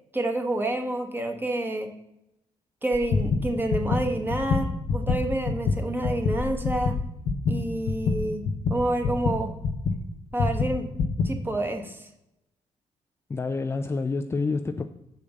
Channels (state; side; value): normal; both; correlation 0.79